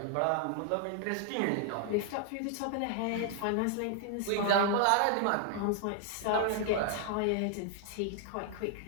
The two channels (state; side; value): different; both; correlation 0.00